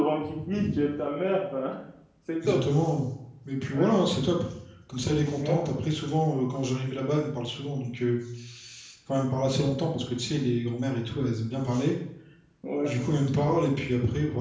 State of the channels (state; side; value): identical; both; correlation 1.00